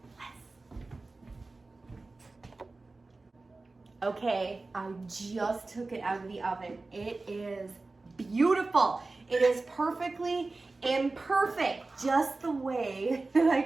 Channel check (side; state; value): left; quieter; 3.4 dB